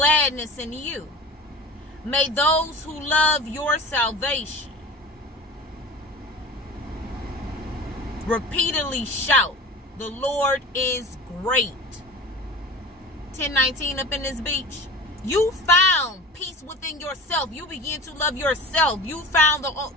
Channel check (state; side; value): normal; both; correlation 0.36